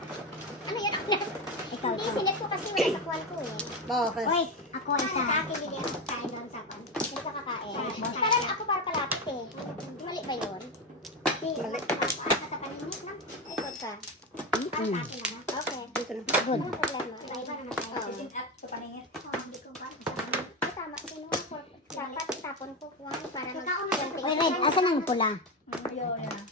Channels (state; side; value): normal; both; correlation 0.16